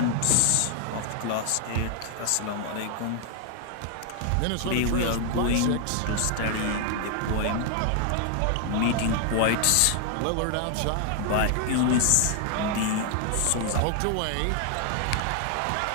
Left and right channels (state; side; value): different; both; correlation 0.00